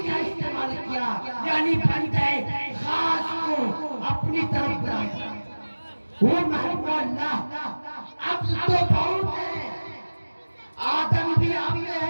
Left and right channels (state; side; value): inverted; both; correlation -1.00